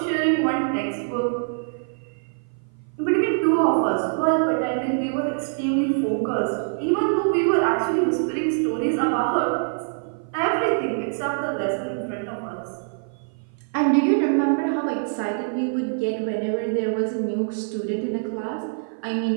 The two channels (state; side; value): silent; left; 56 dB below the other